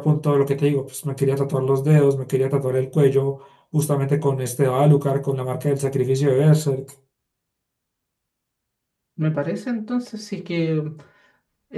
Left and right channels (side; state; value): both; identical; correlation 1.00